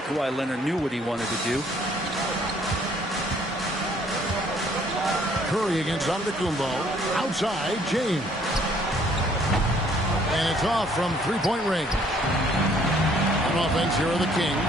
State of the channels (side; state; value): both; normal; correlation 0.62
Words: Leonard knew what he wanted to do. Curry against Antetokounmpo. Outside, James. And it's off from three-point range. On offense, here are the